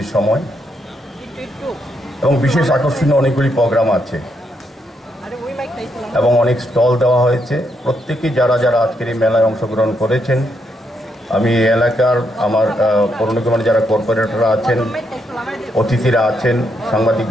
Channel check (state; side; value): normal; both; correlation 0.78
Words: সময়। এবং বিশেষ আকর্ষণীয় অনেকগুলি প্রোগ্রাম আছে এবং অনেক স্টল দেওয়া হয়েছে। প্রত্যেকেই যারা যারা আজকের এই মেলায় অংশগ্রহণ করেছেন, আমি এই এলাকার আমার পৌর নিগমের যারা কর্পোরেটররা আছেন, অতিথিরা আছেন, সাংবাদিক